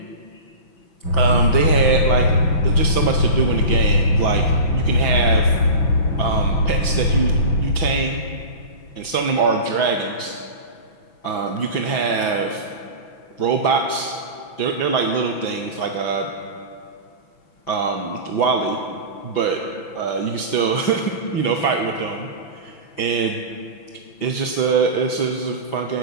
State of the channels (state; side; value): late; right; 6.0 ms